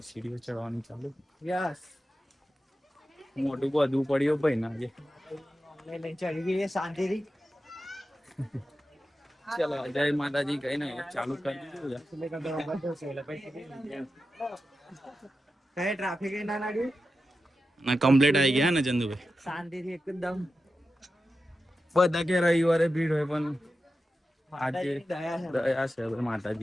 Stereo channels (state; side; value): normal; both; correlation 0.91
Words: સીડીઓ ચડવાની ચાલુ. યસ. મોટું બધું પડ્યું ભાઈ ના આજે. લઈ ચડી ગઈ શાંતિથી. ચલો, જય માતાજી કહીને ચાલુ કરી દીધું. કઈ ટ્રાફિક ના લાગ્યું ના, કમ્પ્લીટ આવી ગયા ને ચંદુભાઈ. શાંતિથી એકદમ. બધા કે રવિવારે ભીડ હોય, પણ આજે દયા દયા છે